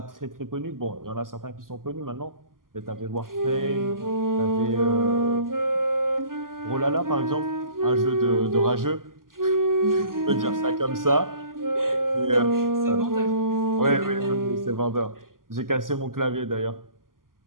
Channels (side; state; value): left; late; 0.91 ms